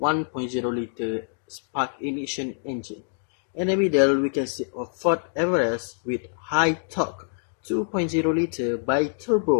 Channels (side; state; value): right; silent; 61 dB below the other